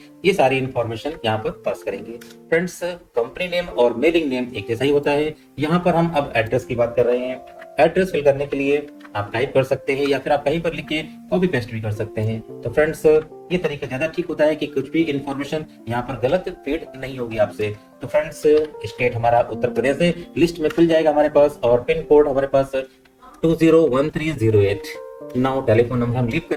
ये सारी इंफॉर्मेशन यहाँ पर पास करेंगे। फ्रेंड्स, कंपनी नेम और मेलिंग नेम एक जैसा ही होता है। यहाँ पर हम अब एड्रेस की बात कर रहे हैं। एड्रेस फिल करने के लिए आप टाइप कर सकते हैं या फिर आप कहीं पर लिख के कॉपी पेस्ट भी कर सकते हैं। तो फ्रेंड्स, ये तरीका ज्यादा ठीक होता है कि कुछ भी इंफॉर्मेशन यहाँ पर गलत फीड नहीं होगी आपसे। तो फ्रेंड्स, स्टेट हमारा उत्तर प्रदेश है, लिस्ट में खुल जाएगा हमारे पास, और पिन कोड हमारे पास 201308। नाउ टेलीफोन नंबर हम लीव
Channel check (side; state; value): both; identical; correlation 1.00